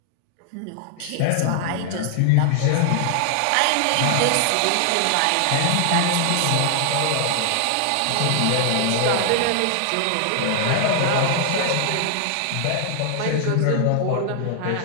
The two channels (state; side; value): different; both; correlation 0.00